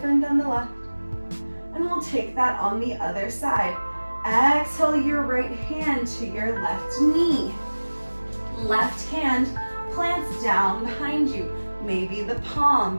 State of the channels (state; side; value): inverted; both; correlation -1.00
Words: than the left. And we'll take that on the other side. Exhale your right hand to your left knee. Left hand plants down behind you. Maybe the